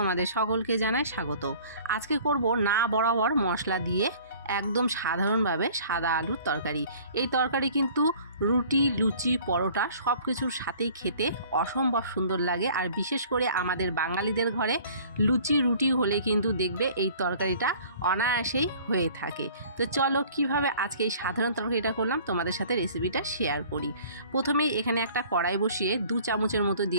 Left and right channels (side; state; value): both; inverted; correlation -0.50